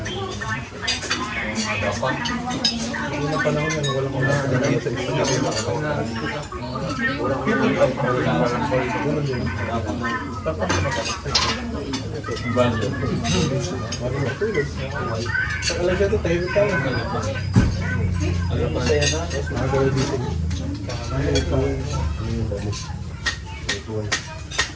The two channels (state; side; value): identical; both; correlation 1.00